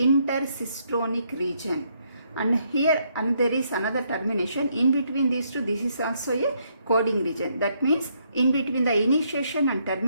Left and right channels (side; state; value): both; inverted; correlation -0.73